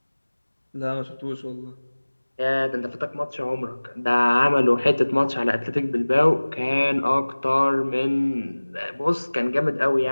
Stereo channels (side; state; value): both; inverted; correlation -1.00